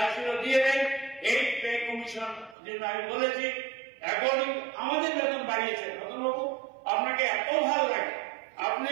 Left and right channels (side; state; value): left; drops out; at 2.6 s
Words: ছিল দিয়ে দেন। এই পে কমিশন যেটা আমি বলেছি, এখন আমাদের বেতন বাড়িয়েছে। রতনবাবু, আপনাকে এত ভালো লাগে, আপনি